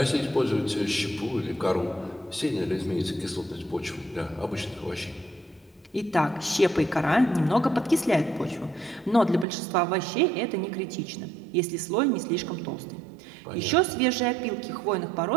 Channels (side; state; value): left; drops out; at 9.5 s